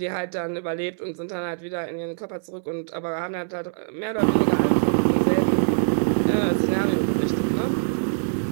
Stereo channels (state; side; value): silent; left; digital silence